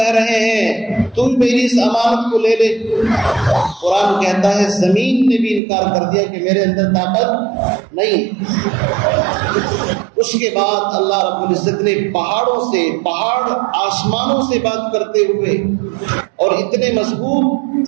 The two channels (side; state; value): left; drops out; at 5.6 s